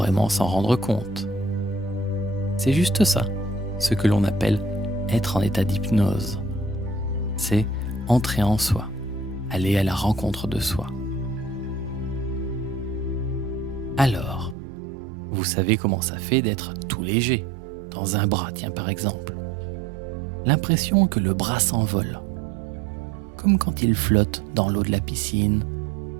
s'en rendre compte. C'est juste ça, ce que l'on appelle être en état d'hypnose. C'est entrer en soi, aller à la rencontre de soi. Alors, vous savez comment ça fait d'être tout léger, dans un bras, tiens par exemple. L'impression que le bras s'envole, comme quand il flotte dans l'eau de la piscine,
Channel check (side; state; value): left; drops out; at 14.6 s